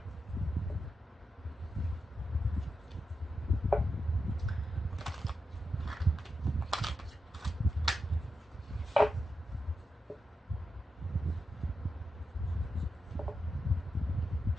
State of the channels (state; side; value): normal; both; correlation 0.88